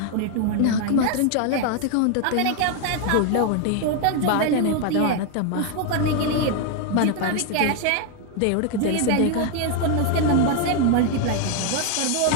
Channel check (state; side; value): different; both; correlation 0.01